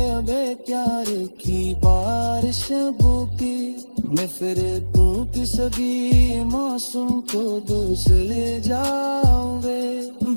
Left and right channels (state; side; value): inverted; both; correlation -1.00